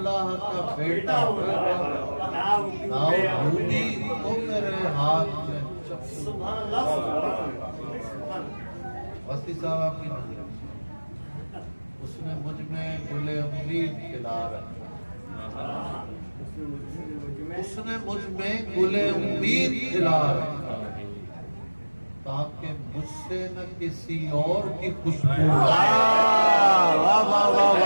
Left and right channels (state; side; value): inverted; both; correlation -1.00